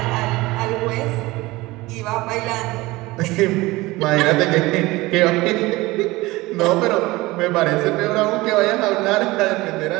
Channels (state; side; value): quieter; left; 20.4 dB